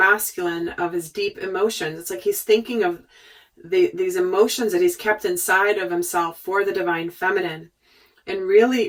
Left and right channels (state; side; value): identical; both; correlation 1.00